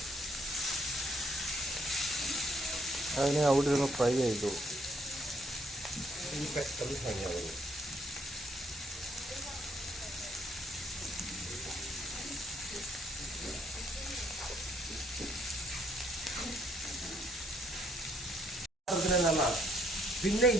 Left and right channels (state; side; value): normal; both; correlation 0.69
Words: അതിനെ അവിടെ ഇരുന്ന് ഫ്രൈ ആയിക്കോളും. പെട്ടെന്ന് ഫ്രൈ ആവുന്നു. പിന്നെ